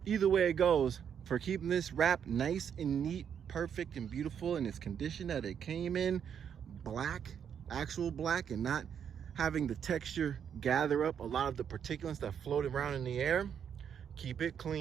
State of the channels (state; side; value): quieter; left; 8.1 dB